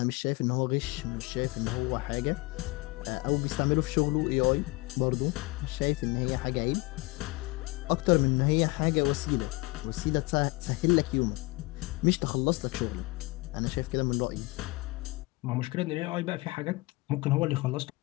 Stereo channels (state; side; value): quieter; right; 24.0 dB